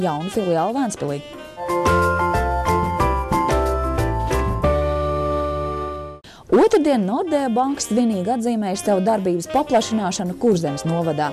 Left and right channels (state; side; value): identical; both; correlation 1.00